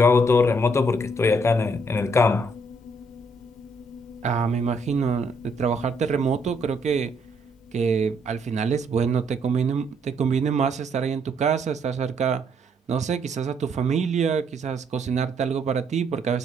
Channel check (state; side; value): normal; both; correlation 0.70